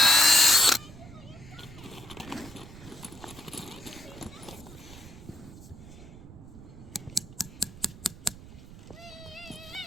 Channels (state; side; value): noise; right; rumble, 17 dB below the sound